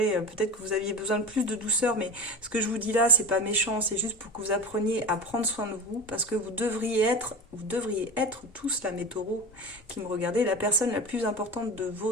Peut-être que vous aviez besoin de plus de douceur, mais ce que je vous dis là, c'est pas méchant, c'est juste pour que vous appreniez à prendre soin de vous, parce que vous devriez être tous là, mes taureaux qui me regardez, la personne la plus importante de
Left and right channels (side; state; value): both; normal; correlation 0.30